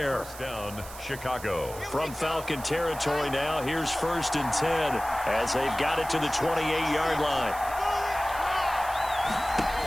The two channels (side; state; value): right; noise; hiss, 15 dB below the sound